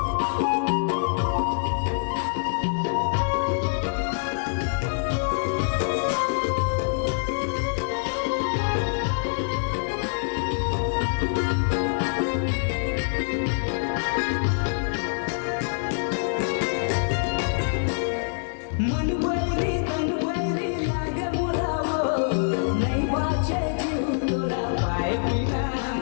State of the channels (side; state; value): right; silent; digital silence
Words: मन बैरी तन बैरी लागे मोलावो नहीं बाचे जीव तोरा पाए